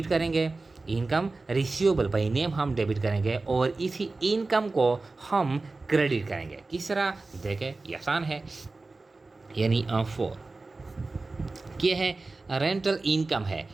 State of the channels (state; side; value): quieter; left; 3.5 dB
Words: करेंगे, इनकम रिसीवेबल बाई नेम हम डेबिट करेंगे और इसी इनकम को हम क्रेडिट करेंगे। किस तरह? देखें, ये आसान है। यानी 4 क्या है? रेंटल इनकम है,